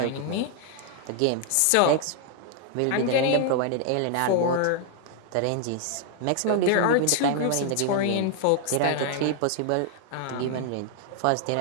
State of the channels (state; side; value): different; both; correlation 0.00